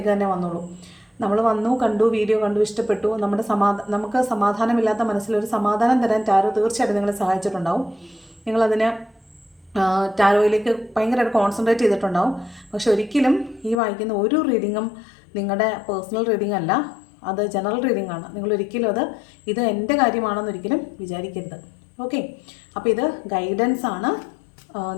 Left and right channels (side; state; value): right; drops out; at 13.8 s